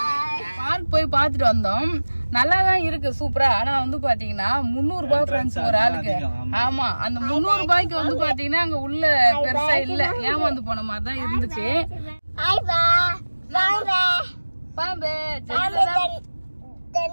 பார்க் போய் பார்த்துட்டு வந்தோம். நல்லா தான் இருக்கு, சூப்பரா. ஆனா வந்து பாத்தீங்கன்னா 300 ரூபாய் ஃப்ரெண்ட்ஸ் ஒரு ஆளுக்கு. ஆமா, அந்த 300 ரூபாய்க்கு வந்து பாத்தீங்கன்னா அங்க உள்ள பெருசா இல்ல, ஏமாந்து போன மாதிரி தான் இருந்துச்சு. பாம்பு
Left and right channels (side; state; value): both; inverted; correlation -1.00